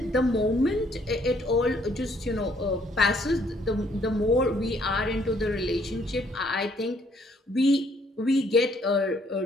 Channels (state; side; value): normal; both; correlation 0.66